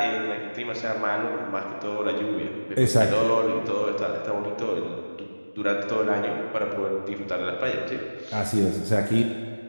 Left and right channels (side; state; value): both; inverted; correlation -1.00